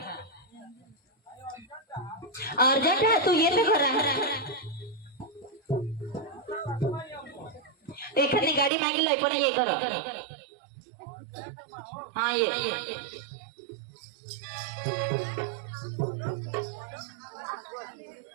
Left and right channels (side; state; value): left; drops out; at 8.7 s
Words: अर्जंट आहे तू ये तर घरा एखादी गाडी मागितली पण ये कर हा ये